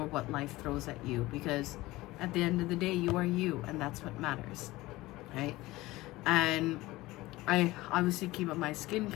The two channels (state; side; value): quieter; right; 19.0 dB